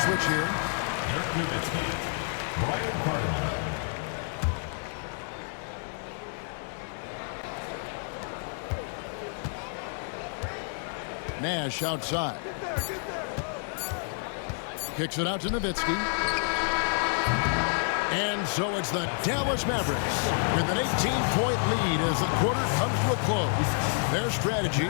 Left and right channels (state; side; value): silent; right; 58 dB below the other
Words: switch here. Dirk Nowitzki. Brian Cardinal. Nash outside. Kicks it out to Nowitzki. And so it's the Dallas Mavericks with an 18-point lead as the quarter comes to a close. Their strategy